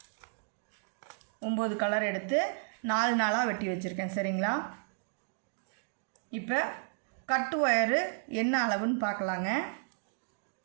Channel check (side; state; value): left; silent; digital silence